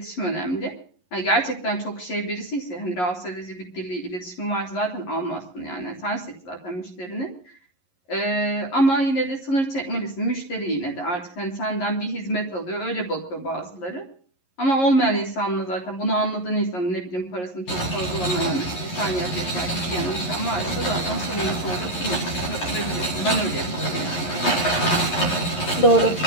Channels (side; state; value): right; late; 11 ms